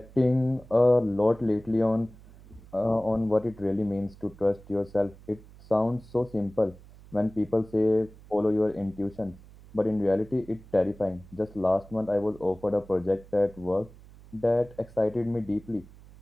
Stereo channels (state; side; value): noise; right; hum, 21 dB below the sound